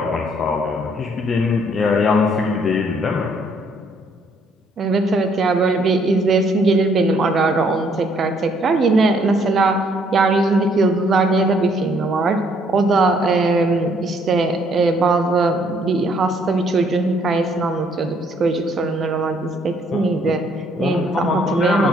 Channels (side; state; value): both; normal; correlation 0.66